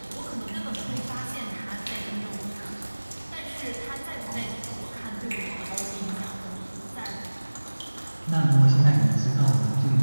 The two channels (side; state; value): both; inverted; correlation -1.00